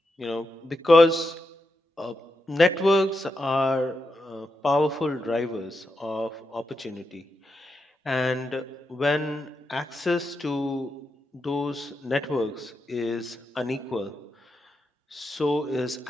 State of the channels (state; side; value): normal; both; correlation 0.86